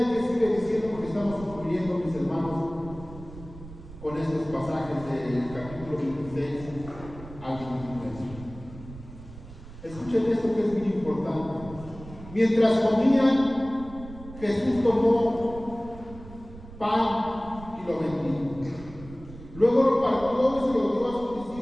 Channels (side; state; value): right; noise; rumble, 16 dB below the sound